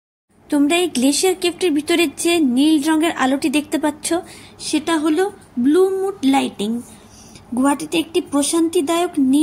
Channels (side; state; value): both; identical; correlation 1.00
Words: তোমরা এই গ্লেশিয়ার কেভটির ভিতরে যে নীল রঙের আলোটি দেখতে পাচ্ছ, সেটা হলো ব্লু মুড লাইটিং। গুহাটিতে একটি প্রশান্তিদায়ক